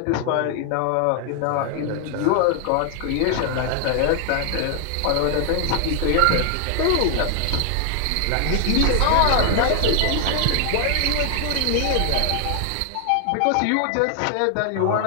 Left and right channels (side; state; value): both; different; correlation 0.00